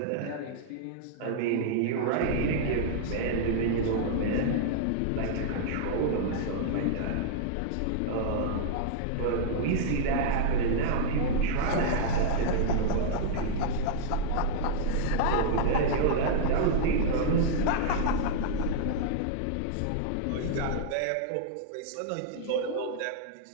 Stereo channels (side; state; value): both; different; correlation -0.01